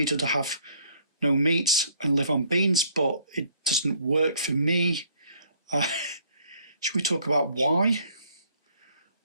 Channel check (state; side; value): inverted; both; correlation -0.61